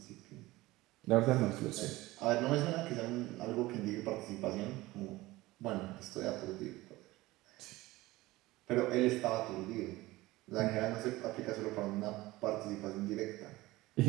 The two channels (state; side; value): quieter; left; 19.0 dB